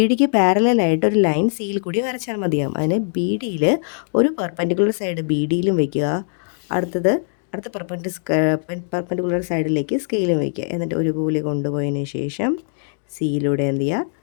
ഡിക്ക് പാരലായിട്ട് ഒരു ലൈൻ സിയിൽ കൂടി വരച്ചാൽ മതിയാകും. അതിന് ബി ഡിയിൽ ഒരു പെർപെൻഡിക്കുലർ സൈഡ് ബി ഡിയിലും വയ്ക്കുക. അടുത്ത പെർപെൻഡിക്കുലർ സൈഡിലേക്ക് സ്കെയിലും വയ്ക്കുക. എന്നിട്ട് ഒരുപോലെ കൊണ്ടുപോയതിന് ശേഷം സിയിലൂടെ എന്ത്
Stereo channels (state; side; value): silent; right; digital silence